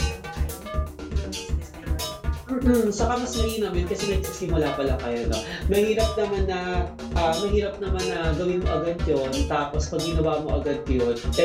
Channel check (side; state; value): both; identical; correlation 1.00